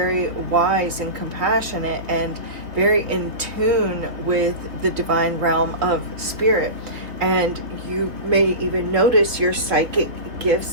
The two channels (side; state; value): left; late; 3.4 ms